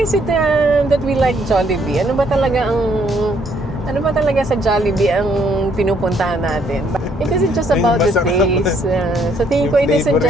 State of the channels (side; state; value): both; normal; correlation 0.68